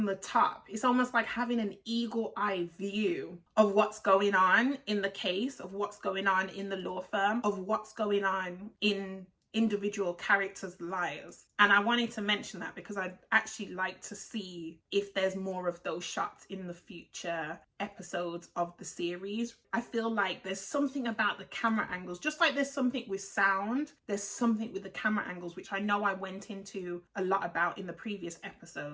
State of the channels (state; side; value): identical; both; correlation 1.00